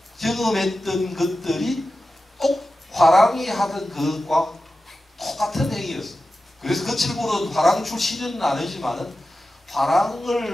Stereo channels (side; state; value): both; normal; correlation 0.93